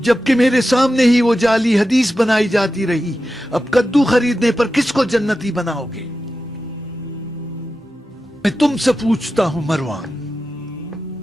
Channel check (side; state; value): both; normal; correlation 0.92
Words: جبکہ میرے سامنے ہی وہ جعلی حدیث بنائی جاتی رہی. اب کدو خریدنے پر کس کو جنتی بناؤ گے؟ میں تم سے پوچھتا ہوں مروان،